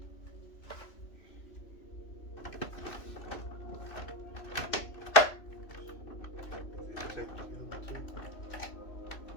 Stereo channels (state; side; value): late; right; 2.6 ms